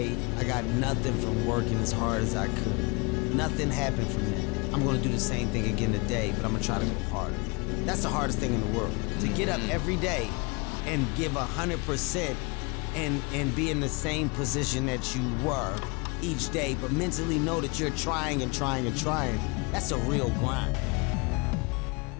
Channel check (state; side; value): quieter; right; 29.4 dB